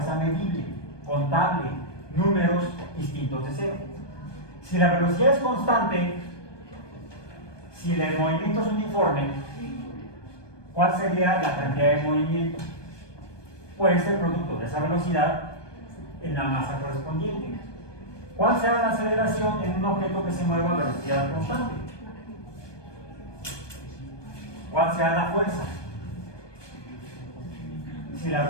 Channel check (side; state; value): right; late; 1.2 ms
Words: medible, contable, números distintos de cero. Si la velocidad es constante, si el movimiento es uniforme, ¿cuál sería la cantidad de movimiento? Pues el producto de esa velocidad en la masa correspondiente. ¿Cuál será la aceleración en un objeto que se mueva a velocidad constante? ¿Cuál será la fuerza si la